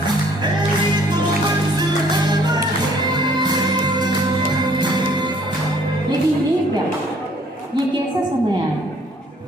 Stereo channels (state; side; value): normal; both; correlation 0.60